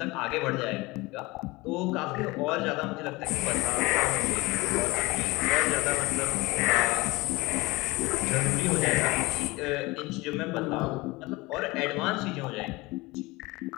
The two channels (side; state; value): right; quieter; 22.5 dB